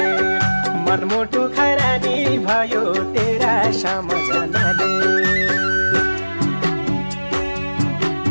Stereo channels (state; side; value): inverted; both; correlation -1.00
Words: मनमुटु खरानी भयो तेरा सम्झनाले।